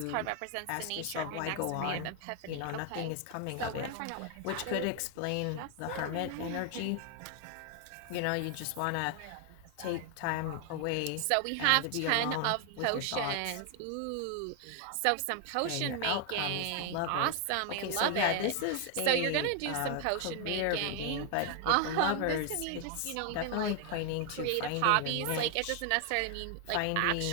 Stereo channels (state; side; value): different; both; correlation 0.00